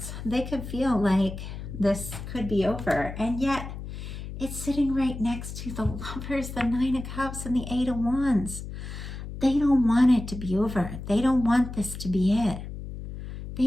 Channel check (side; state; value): left; noise; hum, 9 dB below the sound